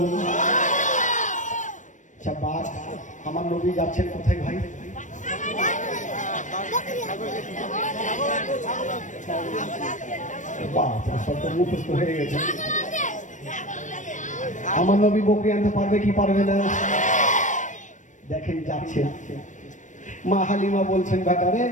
আচ্ছা বাঘ, আমার নবী যাচ্ছেন কোথায় ভাই? মুখস্থ হয়ে গেছে। আমার নবী বকরি আনতে পারবে কি পারবে না? দেখেন যাচ্ছে। মা হালিমা বলছেন বেটারে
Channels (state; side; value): late; right; 0.36 ms